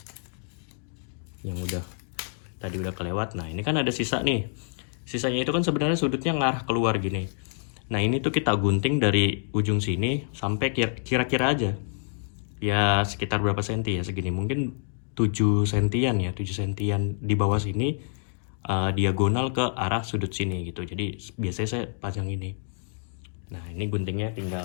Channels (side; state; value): right; silent; digital silence